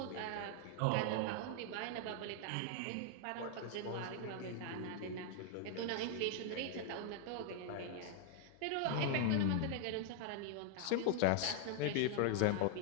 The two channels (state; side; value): different; both; correlation 0.00